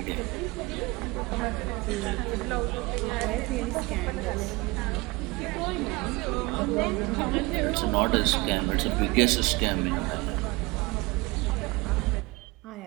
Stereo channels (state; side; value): quieter; left; 24.1 dB